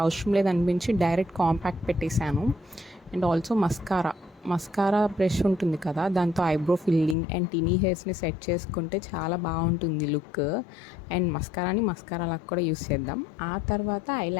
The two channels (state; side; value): drops out; right; at 7.2 s